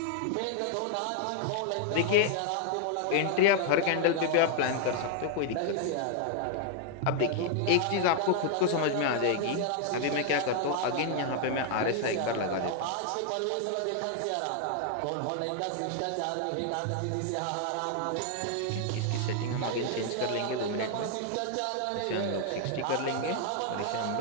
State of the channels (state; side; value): different; both; correlation 0.00